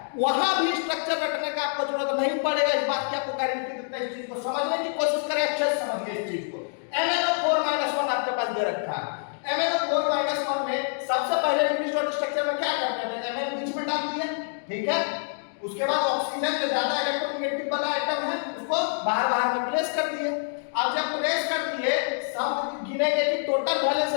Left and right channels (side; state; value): right; silent; digital silence